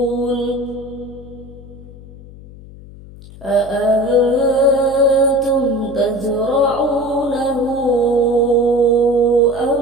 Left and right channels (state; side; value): noise; left; hum, 18 dB below the sound